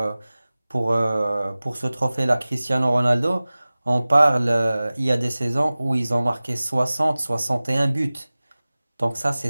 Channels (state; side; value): inverted; both; correlation -0.98